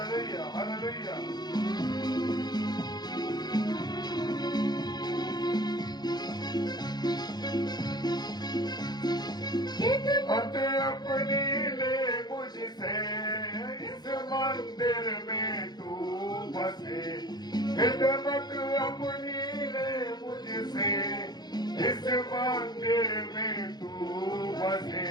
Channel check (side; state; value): right; late; 0.20 ms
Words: Hallelujah. खिदमत अपनी ले मुझसे, इस मंदिर में तू बसे। खिदमत अपनी ले मुझसे, इस मंदिर में तू बसे।